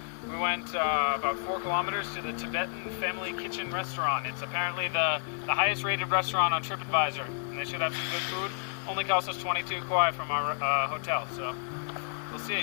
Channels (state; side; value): silent; right; digital silence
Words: we went about 4 kilometers to the Tibetan Family Kitchen restaurant. It's apparently the highest rated restaurant on TripAdvisor, and they should have some good food. Only cost us 22 kuai from our hotel, so we'll